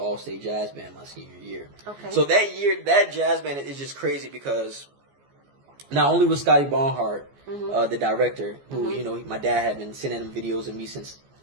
all-state jazz band my senior year. Okay. So that year, that jazz band is just crazy because not only was Scotty Bonhart the director, who my dad had been sending him videos of me since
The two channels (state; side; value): late; left; 14 ms